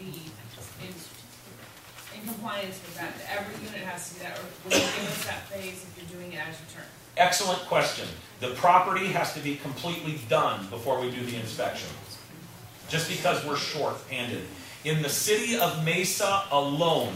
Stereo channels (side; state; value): both; identical; correlation 1.00